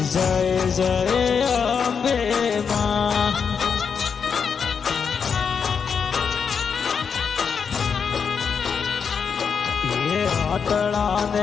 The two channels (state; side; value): quieter; right; 6.4 dB